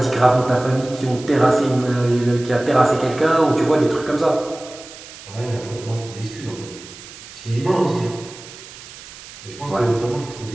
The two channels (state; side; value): noise; right; hiss, 17 dB below the sound